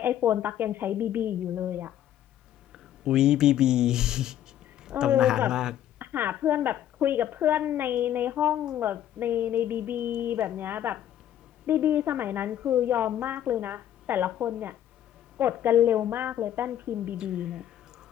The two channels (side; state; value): right; quieter; 11.3 dB